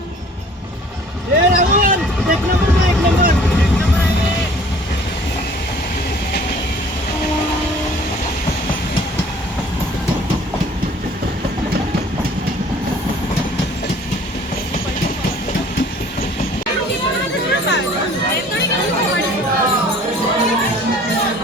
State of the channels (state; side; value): normal; both; correlation 0.52